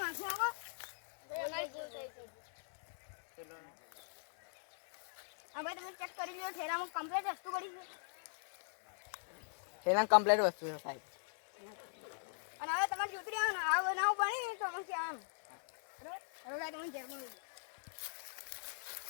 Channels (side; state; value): right; silent; digital silence